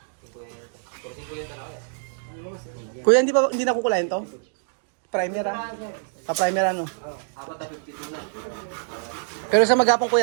Kuya, hindi na kukulayan to? Primer primer ano? Pero sa maghapon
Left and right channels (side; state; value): left; silent; digital silence